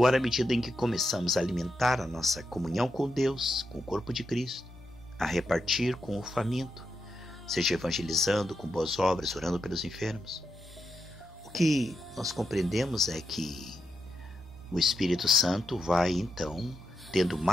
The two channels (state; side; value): normal; both; correlation 0.85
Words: à medida em que começamos a alimentar a nossa comunhão com Deus, com o corpo de Cristo, a repartir com o faminto, seja evangelizando com boas obras, orando pelos enfermos, o que nós compreendemos é que o Espírito Santo vai, então, tendo